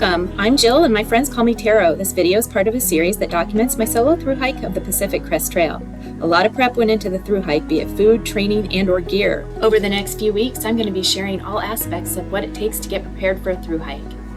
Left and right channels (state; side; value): identical; both; correlation 1.00